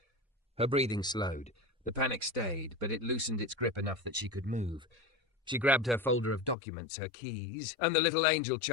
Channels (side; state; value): right; drops out; at 6.6 s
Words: Her breathing slowed. The panic stayed, but it loosened its grip enough that she could move. She grabbed her folder of documents, her keys, and the little angel